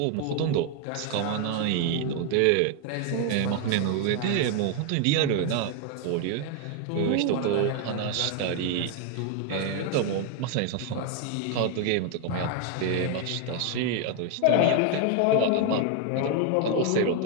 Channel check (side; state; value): both; different; correlation 0.01